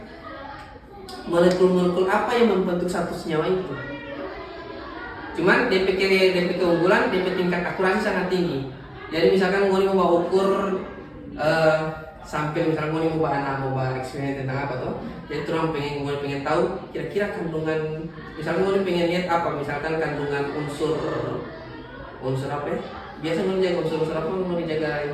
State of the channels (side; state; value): both; identical; correlation 1.00